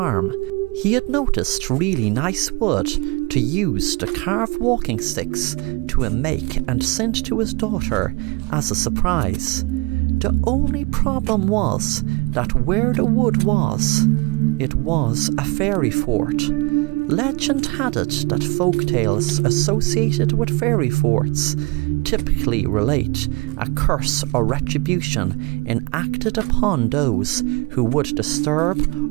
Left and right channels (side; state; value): left; quieter; 26.1 dB